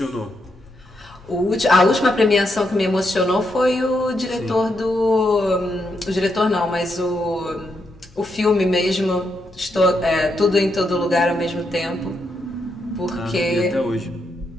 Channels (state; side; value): normal; both; correlation 0.81